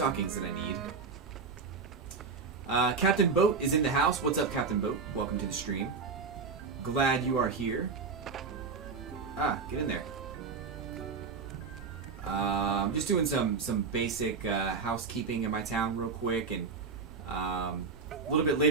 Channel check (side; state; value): left; quieter; 4.9 dB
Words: that I need. Captain Boat is in the house. What's up, Captain Boat? Welcome to the stream. Glad you are here. Get in there. I'm just doing some basic housekeeping in my town real quick, and a little bit